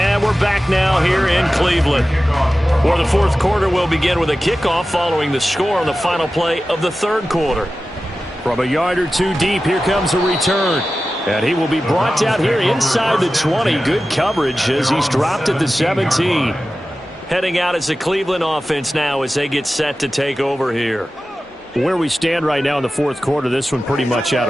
we're back now here in Cleveland, where the 4th quarter will begin with a kickoff following the score on the final play of the 3rd quarter. From a yard or two deep, here comes a return. And he will be brought down here inside the 20. Good coverage as he's dropped at the 17. Heading out as the Cleveland offense now as they get set to take over here. Where we stand right now in the 4th quarter, this one pretty much out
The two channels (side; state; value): both; normal; correlation 0.95